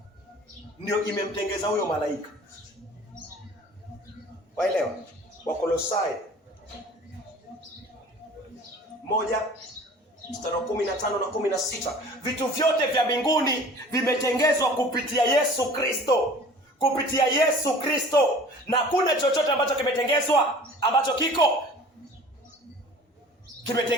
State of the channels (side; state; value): both; normal; correlation 0.45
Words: ndio imemtengeza huyo malaika. Waelewa? Wakolosai 1:15 na 16. Vitu vyote vya mbinguni vimetengezwa kupitia Yesu Kristo. Kupitia Yesu Kristo. Na kuna chochote ambacho kimetengezwa ambacho